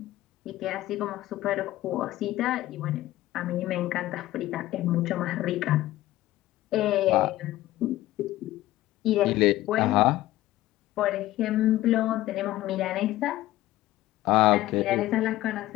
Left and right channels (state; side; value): quieter; right; 15.8 dB